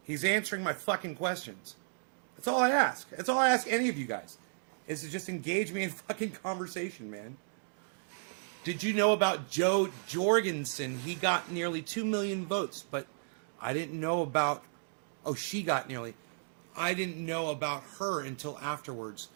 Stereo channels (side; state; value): left; silent; digital silence